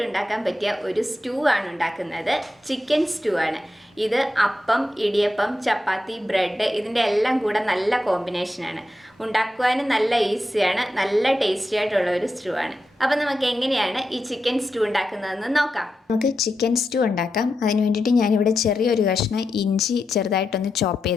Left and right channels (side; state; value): both; normal; correlation 0.88